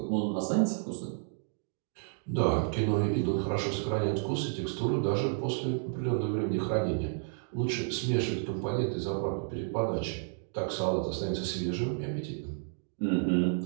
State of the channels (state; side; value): silent; left; 57 dB below the other